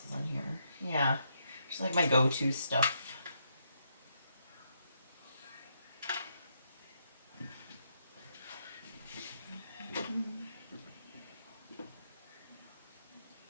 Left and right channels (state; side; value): inverted; both; correlation -0.78